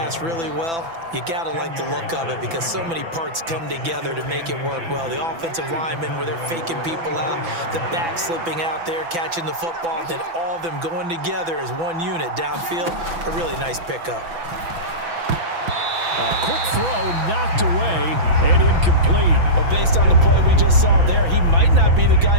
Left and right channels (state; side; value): late; left; 6.0 ms